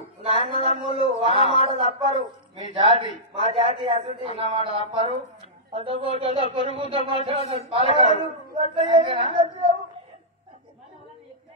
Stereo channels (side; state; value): both; normal; correlation -0.14